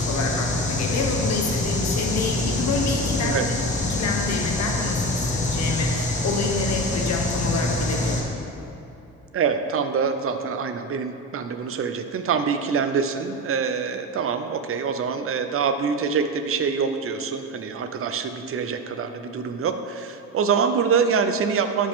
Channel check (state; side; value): normal; both; correlation 0.21